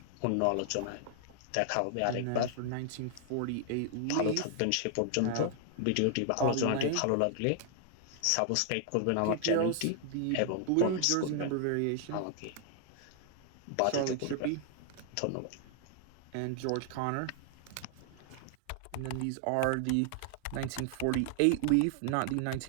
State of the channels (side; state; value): both; different; correlation 0.00